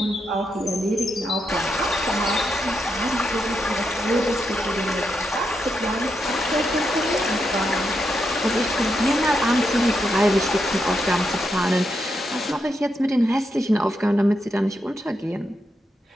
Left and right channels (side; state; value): both; normal; correlation 0.83